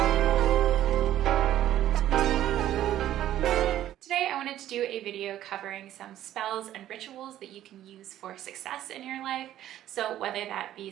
Today I wanted to do a video covering some spells and rituals that you can use for success in your life. So whether that be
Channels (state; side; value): quieter; left; 12.6 dB